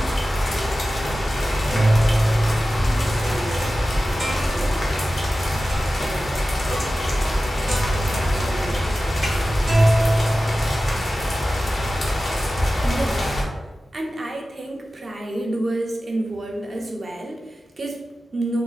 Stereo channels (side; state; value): both; normal; correlation 0.95